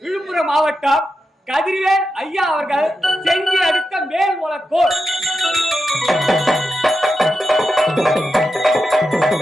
மாவட்டம் கதிர்வேல் ஐயா அவர்கள் செஞ்சி அடுத்த மேல் உலக்கோர்.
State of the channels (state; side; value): normal; both; correlation 0.88